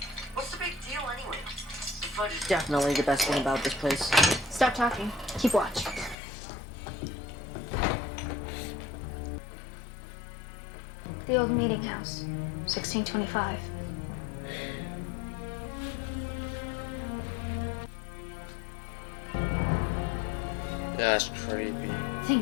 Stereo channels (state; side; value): drops out; right; at 6.2 s